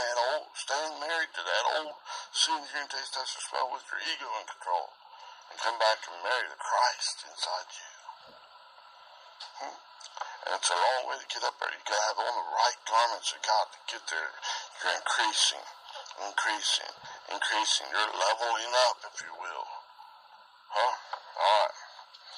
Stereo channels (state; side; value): identical; both; correlation 1.00